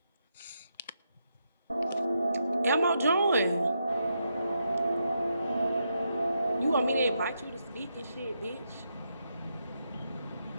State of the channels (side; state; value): both; inverted; correlation -0.82